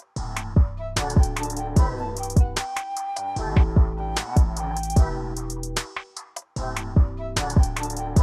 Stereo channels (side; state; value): both; identical; correlation 1.00